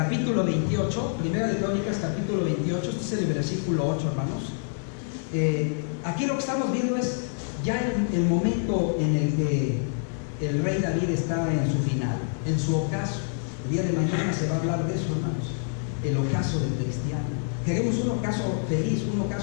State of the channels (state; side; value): silent; right; digital silence